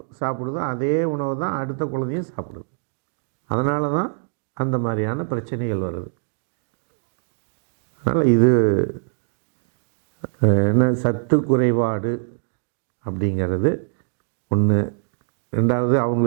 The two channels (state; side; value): silent; left; digital silence